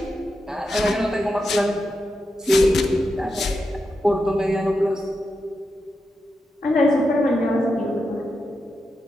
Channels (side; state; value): both; normal; correlation 0.87